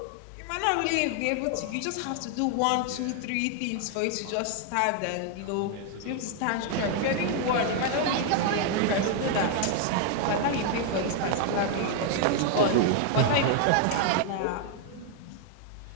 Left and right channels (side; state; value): both; different; correlation 0.00